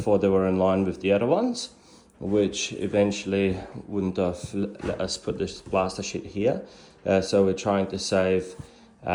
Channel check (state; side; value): identical; both; correlation 1.00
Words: they were in line with the other ones, which eventually wouldn't have let us put this plaster sheet here. So we're trying to save